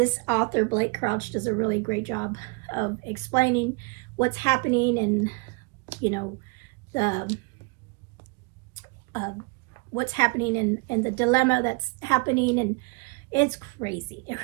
author, Blake Crouch, does a really great job of explaining what's happening, and what's happening and the dilemma that's happening. And it's crazy. It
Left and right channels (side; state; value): left; quieter; 28.9 dB